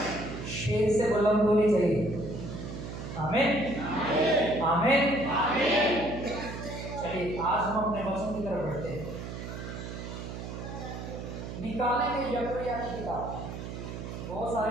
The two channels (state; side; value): noise; right; hum, 8 dB below the sound